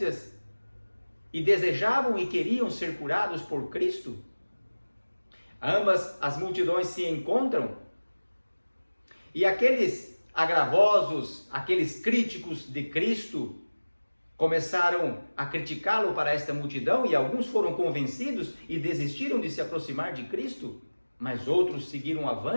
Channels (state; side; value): inverted; both; correlation -1.00